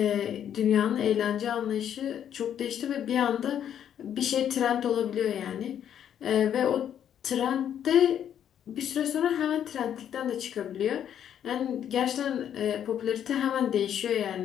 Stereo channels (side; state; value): right; quieter; 9.6 dB